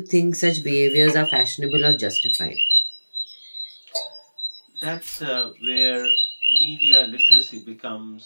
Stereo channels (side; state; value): both; inverted; correlation -1.00